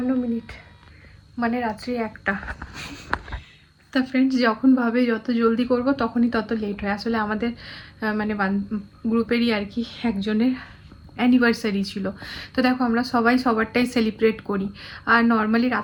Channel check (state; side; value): identical; both; correlation 1.00